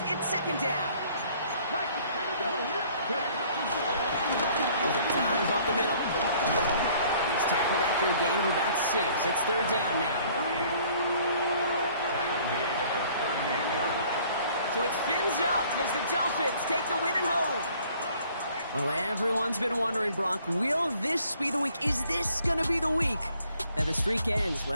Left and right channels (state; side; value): inverted; both; correlation -0.58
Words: It's second down. There's a dive up the middle. He's tackled after a gain of about 6. It's third down now. So it's fins up as the Dolphins take the win at home. Well, everyone's been wondering, Brock, will this be the week? Is this going to be the week that the streak ends?